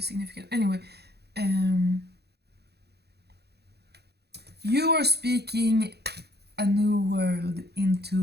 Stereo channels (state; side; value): late; left; 0.48 ms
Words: Anyway, you are speaking a new world